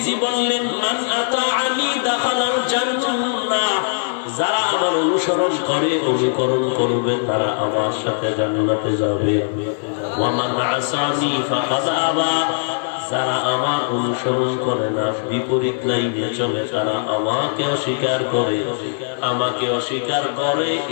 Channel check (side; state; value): right; silent; digital silence